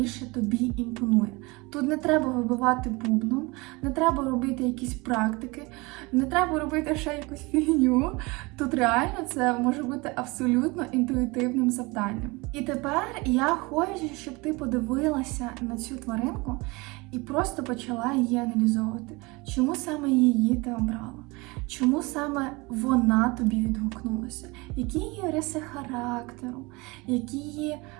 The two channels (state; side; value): quieter; left; 25.0 dB